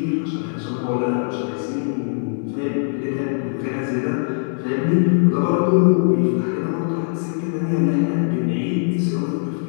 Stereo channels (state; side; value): silent; right; 65 dB below the other